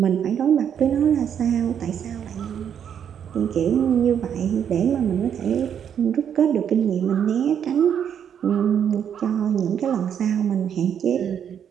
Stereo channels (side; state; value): left; quieter; 8.5 dB